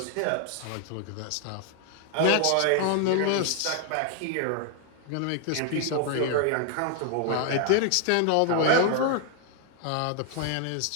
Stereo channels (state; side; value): different; both; correlation 0.00